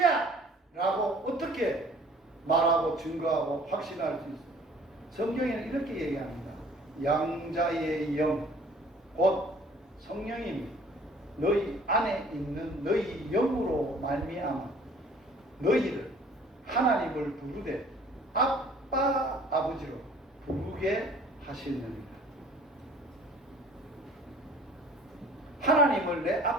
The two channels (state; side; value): normal; both; correlation 0.52